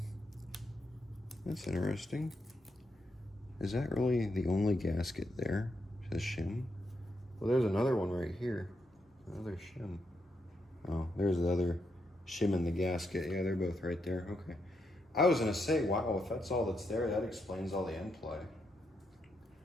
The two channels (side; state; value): both; normal; correlation 0.81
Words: that's interesting. Is that really the only gasket there? It says shim. Well, there's another one right here. Another shim. Oh, there's the other shim in the gasket. Yeah, they're both right there. Okay. I was gonna say, wow, if that's all that's there, that explains all the end play.